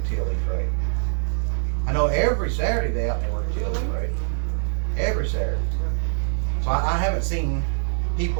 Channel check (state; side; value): silent; left; 56 dB below the other